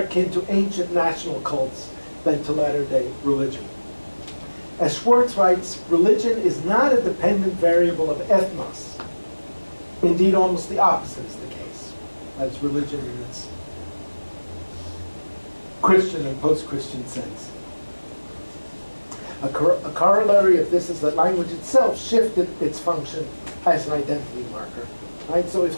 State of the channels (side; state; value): both; inverted; correlation -1.00